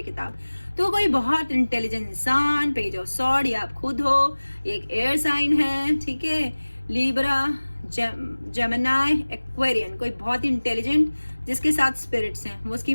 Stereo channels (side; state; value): both; inverted; correlation -1.00